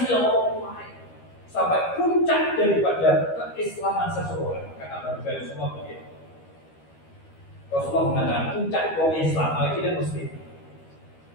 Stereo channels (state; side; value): late; right; 13 ms